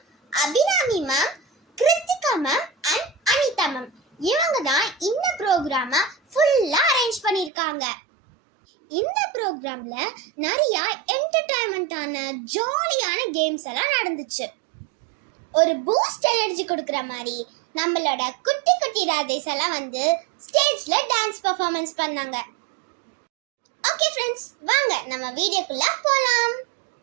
Abirami ma'am, Kiruthika ma'am and Anitha ma'am இவங்க தான் இந்த ப்ரோக்ராமை ஃபுல்லா அரேஞ்ச் பண்ணிருக்காங்க. இந்த ப்ரோக்ராம்ல நிறைய என்டர்டைன்மெண்டான ஜாலியான கேம்ஸ் எல்லாம் நடந்துச்சு. ஒரு பூஸ்ட் எனர்ஜி கொடுக்குற மாதிரி நம்மளோட குட்டி குட்டி ராதேஸ் எல்லாம் வந்து ஸ்டேஜ்ல டான்ஸ் பெர்ஃபார்மன்ஸ் பண்ணாங்க. ஓகே ஃப்ரெண்ட்ஸ், வாங்க நம்ம வீடியோக்குள்ள போலாம்.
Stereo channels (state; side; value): drops out; left; at 7.5 s